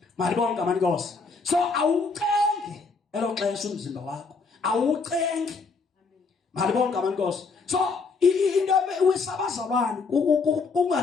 Malibonke abantu Nkosi. So awucenge elo xesha umzimba wakho. Awucenge. Malibonke abantu Nkosi. So into wisabazalwane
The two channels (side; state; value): right; quieter; 4.5 dB